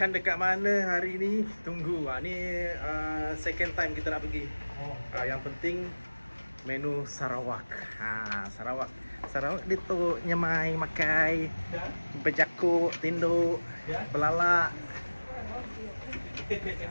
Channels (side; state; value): both; inverted; correlation -1.00